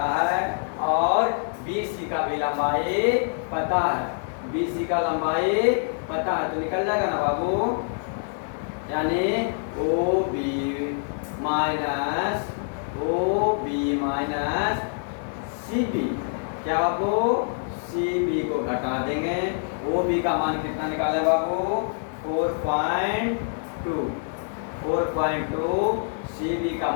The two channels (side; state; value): right; silent; digital silence